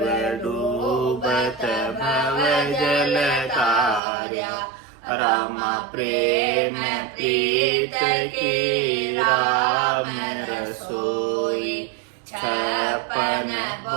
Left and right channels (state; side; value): drops out; left; at 4.0 s